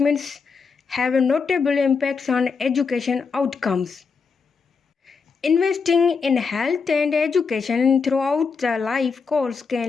have notable impacts on education outcomes. Investing in health and education throughout the life course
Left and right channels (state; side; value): quieter; right; 5.2 dB